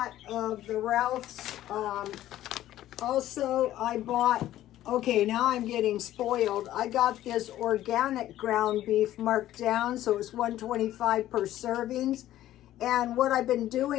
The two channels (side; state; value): right; quieter; 13.6 dB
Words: of the Ralph's. Also, I bought, okay, now I'm getting spoiled. I got this organic ground beef marked down, so it's $1.25 per servings. And what I've been